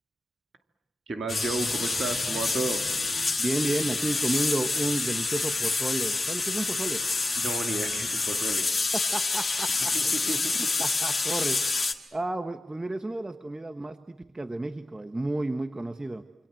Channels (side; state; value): both; normal; correlation 0.92